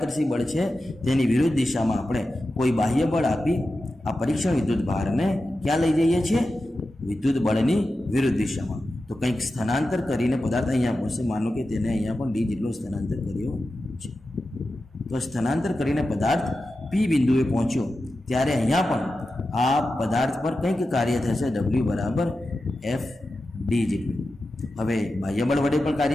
બળ છે તેની વિરુદ્ધ દિશામાં આપણે કોઈ બાહ્ય બળ આપી આ પરીક્ષણ વિદ્યુત ભારને ક્યાં લઈ જઈએ છીએ? વિદ્યુત બળની વિરુદ્ધ દિશામાં. તો કંઈક સ્થાનાંતર કરીને પદાર્થ અહીંયા પહોંચશે. માનો કે તેને અહીંયા પણ ડી જેટલો સ્થાનાંતર કર્યો છે. તો સ્થાનાંતર કરીને પદાર્થ પી બિંદુએ પહોંચ્યો ત્યારે અહીંયા પણ આ પદાર્થ પર કંઈક કાર્ય થશે, W બરાબર F ડી જેટલું. હવે બાહ્ય બળ વડે પણ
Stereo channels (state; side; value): normal; both; correlation 0.92